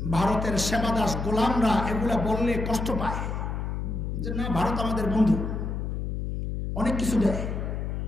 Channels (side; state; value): left; noise; hum, 3 dB below the sound